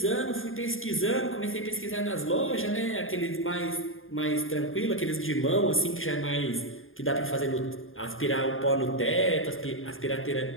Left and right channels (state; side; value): late; right; 0.59 ms